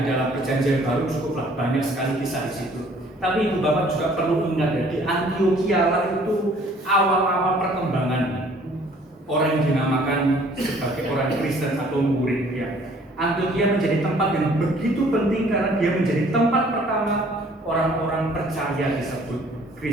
dalam perjanjian baru cukuplah banyak sekali kisah di situ. Tapi ibu bapak juga perlu ingat ya, di Antiokhia lah itu awal-awal perkembangan orang yang dinamakan sebagai orang Kristen atau murid ya. Antiokhia menjadi tempat yang begitu penting karena dia menjadi tempat pertama orang-orang percaya disebut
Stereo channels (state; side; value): normal; both; correlation 0.57